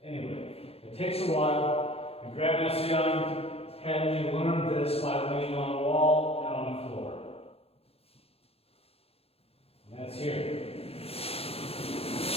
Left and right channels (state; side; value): late; right; 0.29 ms